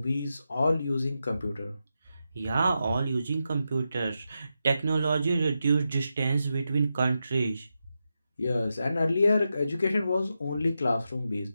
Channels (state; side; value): inverted; both; correlation -0.88